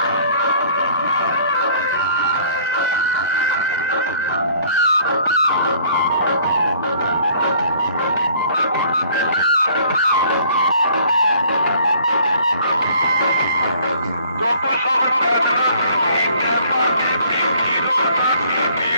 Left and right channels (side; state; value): both; inverted; correlation -0.55